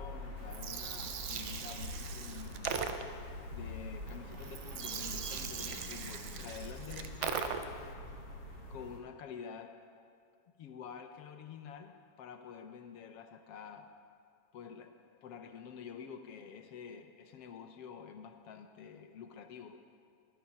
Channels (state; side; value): late; right; 7.2 ms